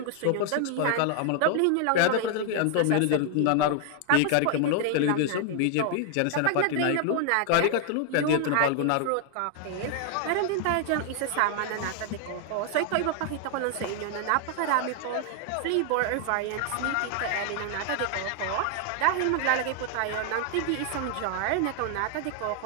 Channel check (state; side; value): different; both; correlation 0.00